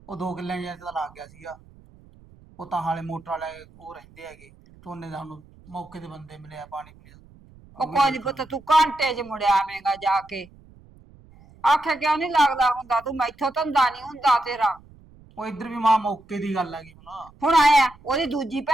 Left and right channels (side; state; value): right; noise; rumble, 25 dB below the sound